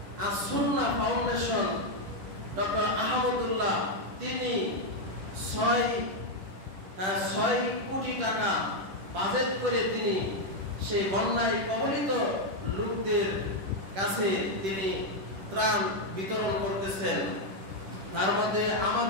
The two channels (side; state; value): left; late; 10 ms